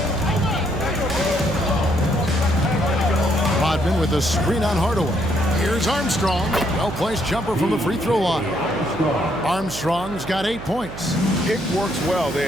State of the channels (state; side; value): noise; right; hum, 12 dB below the sound